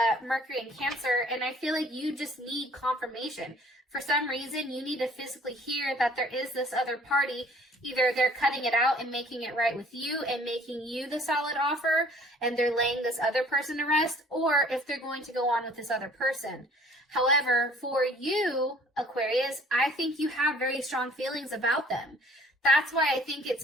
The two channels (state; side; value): normal; both; correlation 0.54